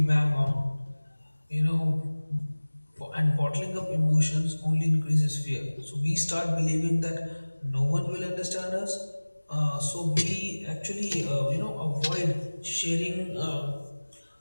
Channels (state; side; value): inverted; both; correlation -1.00